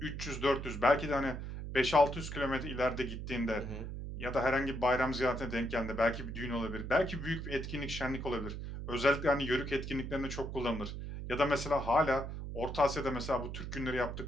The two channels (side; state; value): right; noise; hum, 7 dB below the sound